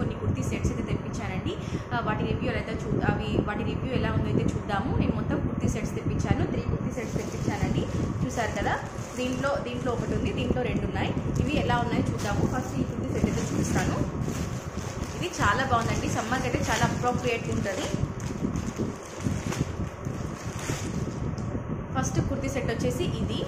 కుర్తీ సెట్స్ అయితే తెప్పించానండి. వాటి రివ్యూ ఎలా ఉందో అయితే చూద్దాము. నేను మొత్తం కుర్తీ సెట్స్ తెప్పించాను. 3 కుర్తీ సెట్స్ తెప్పించానండి. చూసారు కదా, దీంట్లో ఒకటి ఉంది, దీంట్లో 2 ఉన్నాయి. ఇవి ఎలా ఉన్నాయో చూద్దాము. ఫస్ట్ ఈ కుర్తీ సెట్ అయితే చూపిస్తాను. ఇది చాలా బాగుందండి, సమ్మర్కి అయితే చాలా అప్రోప్రియేట్గా ఉంటుంది. ఫస్ట్ కుర్తీ సెట్ వచ్చేసి ఇది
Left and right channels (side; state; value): both; identical; correlation 1.00